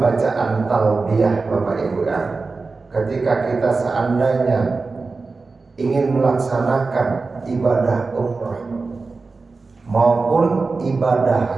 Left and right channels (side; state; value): left; quieter; 4.0 dB